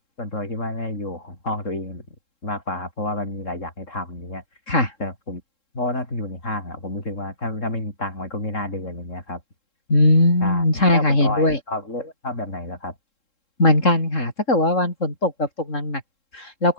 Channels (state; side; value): late; right; 3.7 ms